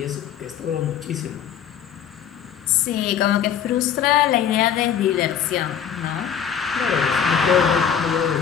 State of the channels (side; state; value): right; quieter; 8.5 dB